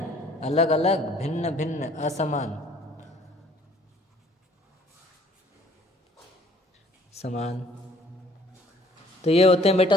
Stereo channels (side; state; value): both; normal; correlation 0.57